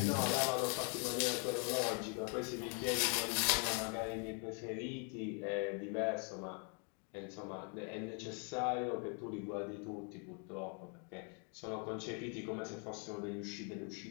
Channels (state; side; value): quieter; right; 39.5 dB